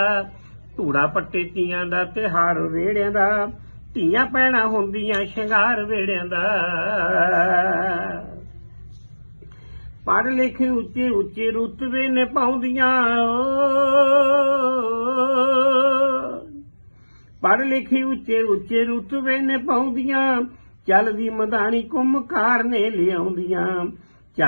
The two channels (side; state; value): both; inverted; correlation -1.00